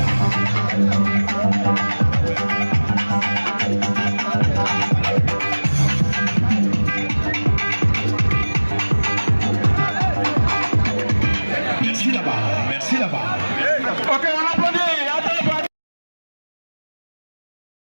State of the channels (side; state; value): both; inverted; correlation -1.00